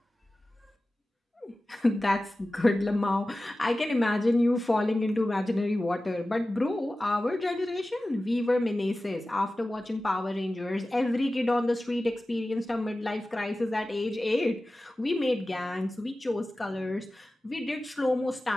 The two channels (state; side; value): normal; both; correlation 0.96